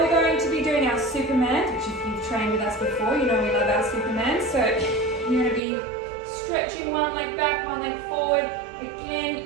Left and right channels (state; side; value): drops out; left; at 5.6 s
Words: going to be doing our Superman, which if you've trained with us before, you know we love our Superman. So you're going to be stretching one leg back, one leg forward. Again,